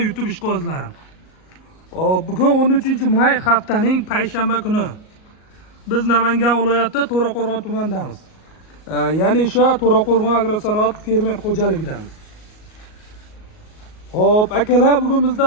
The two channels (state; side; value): late; right; 38 ms